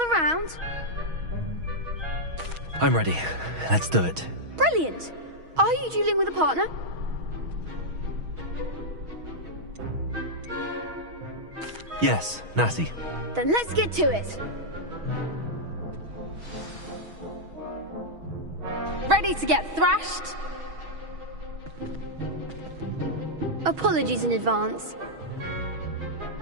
round? I'm ready. Let's do it. Brilliant. Are you dueling with a partner? Yes, Natty. Then let's get to it. Ready to get thrashed? Apologies in advance.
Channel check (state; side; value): late; left; 6.3 ms